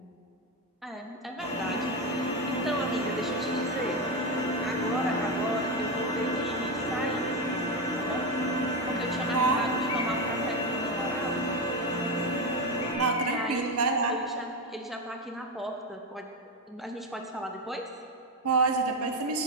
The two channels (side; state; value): both; normal; correlation 0.12